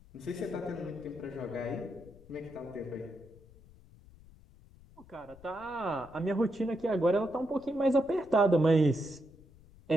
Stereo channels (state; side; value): noise; left; rumble, 23 dB below the sound